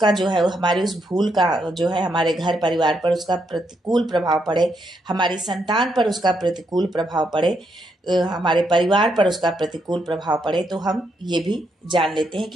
जो है हमारी उस भूल का जो है हमारे घर परिवार पर उसका प्रतिकूल प्रभाव पड़े, हमारी संतान पर उसका प्रतिकूल प्रभाव पड़े, हमारे परिवार पर उसका प्रतिकूल प्रभाव पड़े, तो हम ये भी जान लेते हैं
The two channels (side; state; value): both; normal; correlation 0.78